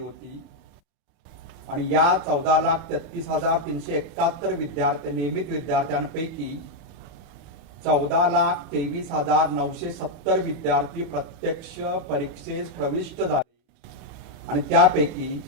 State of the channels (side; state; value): left; late; 35 ms